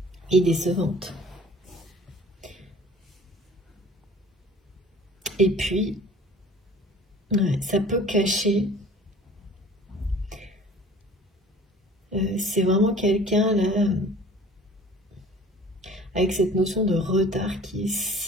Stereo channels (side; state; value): both; normal; correlation 0.48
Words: est décevante. Et puis, ouais, ça peut cacher. C'est vraiment quelqu'un là, avec cette notion de retard qui est